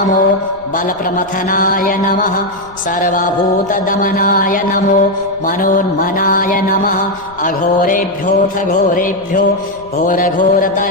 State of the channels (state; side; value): noise; left; rumble, 25 dB below the sound